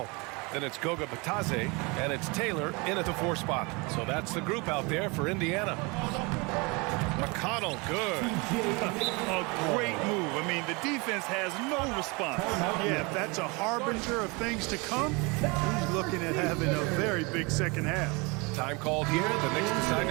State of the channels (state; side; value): quieter; left; 27.9 dB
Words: Then it's Goga Batadze, and it's Taylor in at the 4 spot. So that's the group out there for Indiana. McConnell, good. A great move. I mean, the defense has no response. Yeah, if that's a harbinger of things to come, he's looking at having a very big second half. Time called here. The Knicks decide